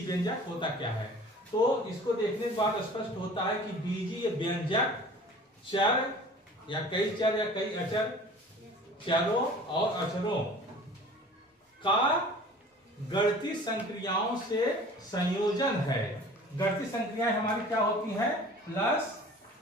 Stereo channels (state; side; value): normal; both; correlation 0.45